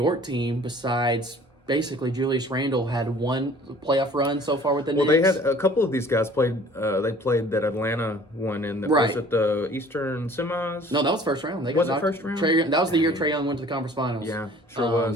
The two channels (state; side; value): normal; both; correlation 0.51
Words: team, besides basically Julius Randle, had 1 playoff run so far with the Knicks. Well, they had a couple of these guys played. They played that Atlanta one in the was it the Eastern semis? No, that was first round. Was it first round? That was the year Trae Young went to the conference finals. Yeah, sure